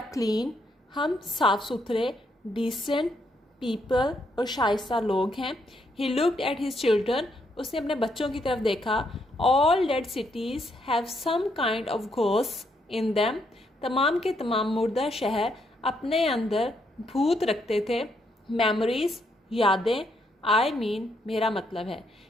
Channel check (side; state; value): both; normal; correlation 0.75